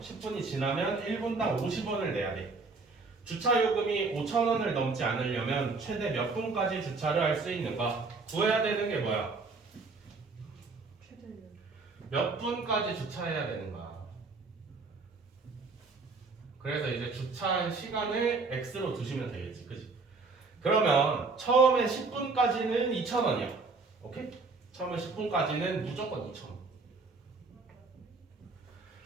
10분이 지나면 1분당 50원을 내야 돼. 주차요금이 5,000원을 넘지 않으려면 최대 몇 분까지 주차를 할 수 있는가? 구해야 되는 게 뭐야? 몇 분까지 주차해야 되는가? 그래서 이제 주차한 시간을 X로 두시면 되겠지, 그치? 그러면 처음에 10분까지는 2,000원이야. 오케이? 처음에 10분까지는 무조건 2,000원.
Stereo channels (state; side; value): quieter; left; 4.0 dB